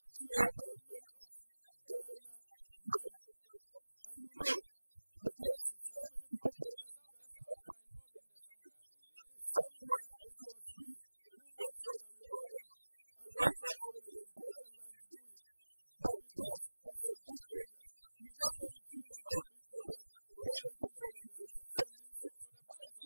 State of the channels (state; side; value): inverted; both; correlation -1.00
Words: government of Ghana money. And you know, the taxes, how many people pay taxes? The Saudis are involved in there somewhere, I think. Somewhere. It was we who made sure that we brought them. And we also found a dedicated line to do it. But because it's a big project, you just don't dream of that big project without making sure that there is a funding source. So the blood is